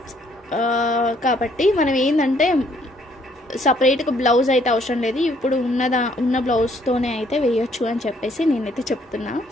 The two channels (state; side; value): normal; both; correlation 0.66